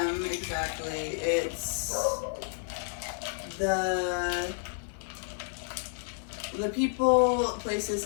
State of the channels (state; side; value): silent; right; 57 dB below the other